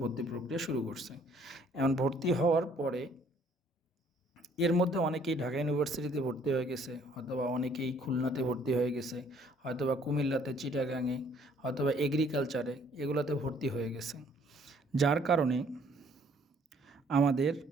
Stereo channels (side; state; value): both; normal; correlation 0.61